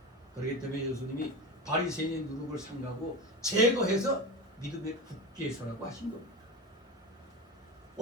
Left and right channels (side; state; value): both; normal; correlation 0.24